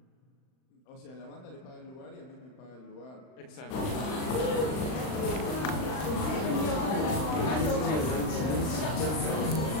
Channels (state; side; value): late; right; 39 ms